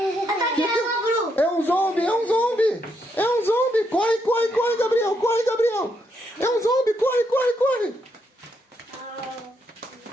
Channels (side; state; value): both; normal; correlation 0.78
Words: É um zombie, é um zombie! É um zombie! Corre, corre, corre, Gabriel! Corre, Gabriel! É um zombie! Corre, corre, corre!